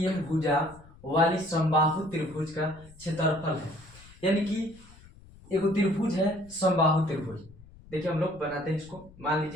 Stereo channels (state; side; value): noise; left; rumble, 22 dB below the sound